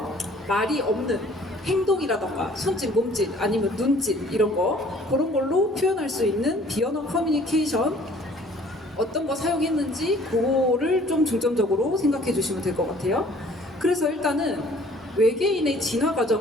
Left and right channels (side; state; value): both; normal; correlation 0.54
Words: 말이 없는 행동이라던가 손짓, 몸짓 아니면 눈짓 이런 거 그런 걸로 표현할 수 있는 비언어 커뮤니케이션 어떤 거 사용했는지 그거를 좀 중점적으로 생각해 주시면 될 것 같아요. 그래서 일단은 외계인의 진화